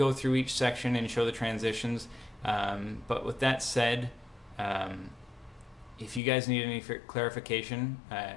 through each section and show the transitions, but with that said, if you guys need any clarification,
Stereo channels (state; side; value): drops out; right; at 6.2 s